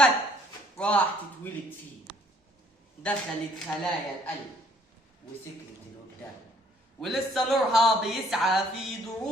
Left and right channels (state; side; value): normal; both; correlation 0.62